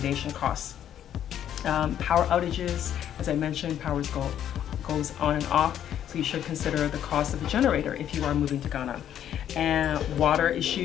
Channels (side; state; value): right; quieter; 10.3 dB